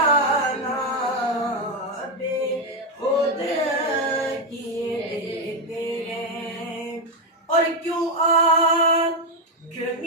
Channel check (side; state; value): both; normal; correlation 0.06